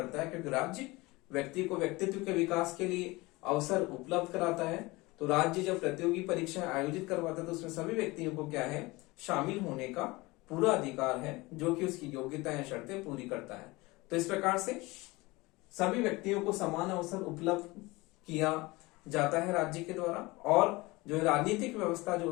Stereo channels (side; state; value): right; quieter; 22.4 dB